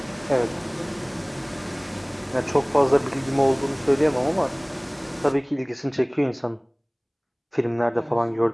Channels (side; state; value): both; identical; correlation 1.00